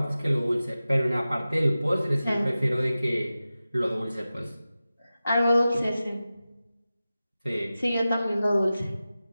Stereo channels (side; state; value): both; inverted; correlation -0.95